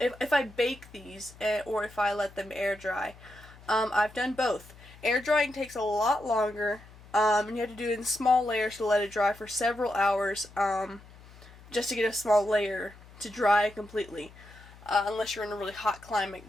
if I bake these, or if I let them air dry. I've done both. Air drying takes a lot longer. And you have to do it in small layers to let it dry for several hours, just to get a small layer to dry completely. Unless you're in a really hot climate,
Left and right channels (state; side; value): noise; left; hum, 21 dB below the sound